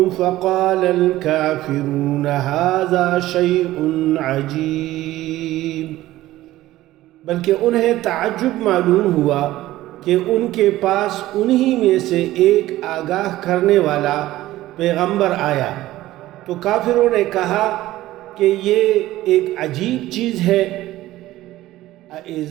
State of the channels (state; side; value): quieter; left; 15.8 dB